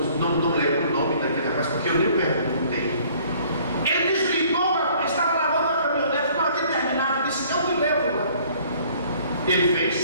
não lembro o nome daquele rapaz, porque eu nem perguntei. Ele desligou, estava lavando a caminhonete, não havia terminado, disse: eu te levo lá. Ele fez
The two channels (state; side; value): inverted; both; correlation -0.57